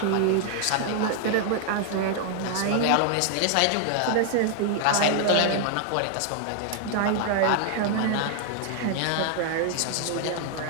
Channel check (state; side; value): different; both; correlation 0.00